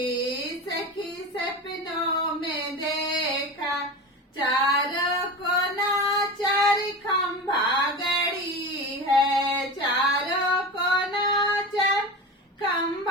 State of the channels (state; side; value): normal; both; correlation 0.27